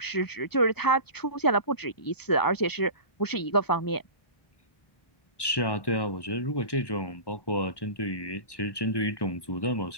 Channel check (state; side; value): late; right; 1.1 ms